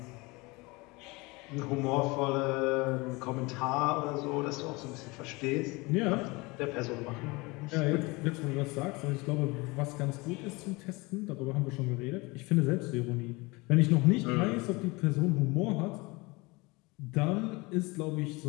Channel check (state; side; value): quieter; right; 24.7 dB